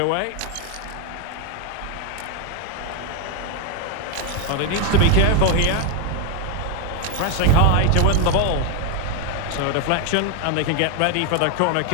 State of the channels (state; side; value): different; both; correlation 0.01